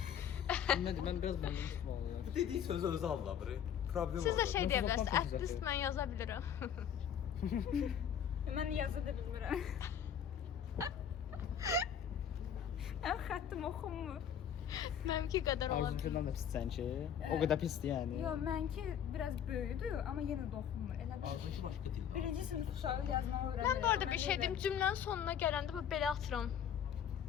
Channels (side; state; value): right; quieter; 8.7 dB